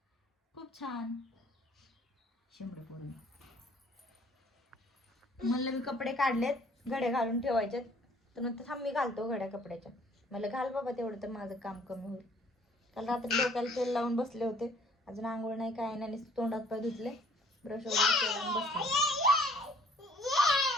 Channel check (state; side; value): normal; both; correlation 0.58